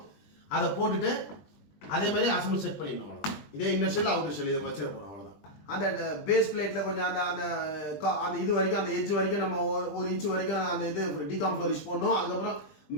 அதை போட்டுட்டு அதே மாதிரி அசம்பிள் செட் பண்ணிடணும். அவ்வளோதான். இதே இன்னர் ஷெல் அவுட்டர் ஷெல் இதை வச்சிட போகிறோம். அவ்வளோதான். அந்த பேஸ் பிளேட்டில் கொஞ்சம் அந்த அந்த அந்த இது வரைக்கும் அந்த எட்ஜ் வரைக்கும் நம்ம 1 இன்ச்சு வரைக்கும் அந்த இது டிகாம் ஃப்ளோரிஷ் போடணும். அதுக்கப்புறம்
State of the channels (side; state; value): right; late; 20 ms